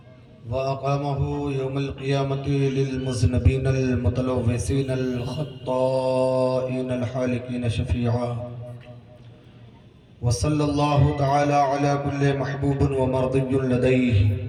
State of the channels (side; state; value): both; identical; correlation 1.00